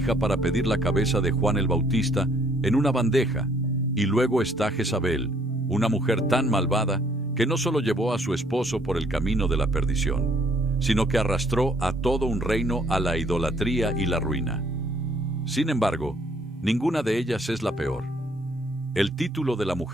para pedir la cabeza de Juan el Bautista en una bandeja. Y luego está Jezabel, una mujer tan malvada que no solo llevó a su esposo por el camino de la perdición, sino que arrastró a todo un reino a la idolatría y la ruina. Sin embargo, ninguna de ellas es la peor. El título de la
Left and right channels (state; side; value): normal; both; correlation 0.64